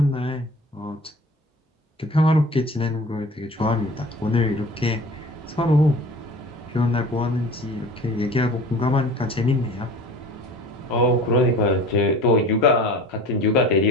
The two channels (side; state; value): both; normal; correlation 0.41